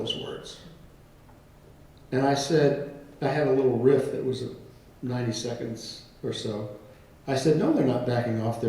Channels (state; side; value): identical; both; correlation 1.00